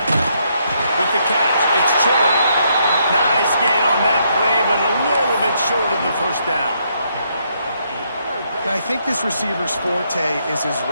With the catch, it's Cherry. Nice gain on that play, but a little bit short of the first down. And I think this receiver's forte is his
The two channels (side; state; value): both; inverted; correlation -0.74